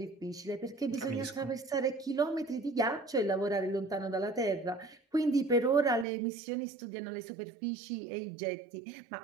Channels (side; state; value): left; drops out; at 6.1 s